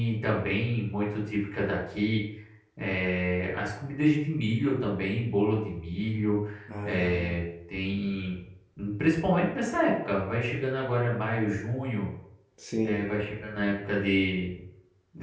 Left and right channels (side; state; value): both; identical; correlation 1.00